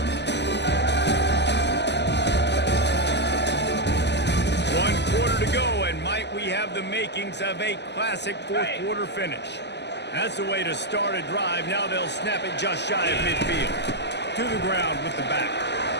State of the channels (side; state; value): right; late; 0.50 ms